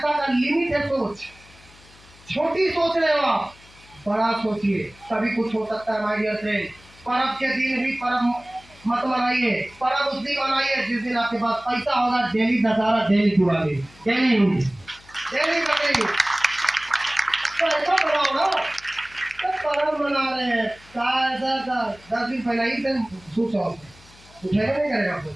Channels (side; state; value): left; noise; hum, 25 dB below the sound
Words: का लिमिट है, सोच छोटी सोच रहे हो आप, बड़ा सोचिए, तभी कुछ हो सकता है। माय डियर फ्रेंड, पर्व के दिन भी पर्व मत मनाइए, पर्व उस दिन मनाइए जिस दिन आपके पास पैसा होगा। Daily Dussehra, daily Diwali, daily Bakrid, तो ऐसा बनाओ ना। तो पर्व मना रहे हैं, ऐसा 10 दिन पहले ही से स्विच ऑफ उठेगा नहीं करेगा, आपको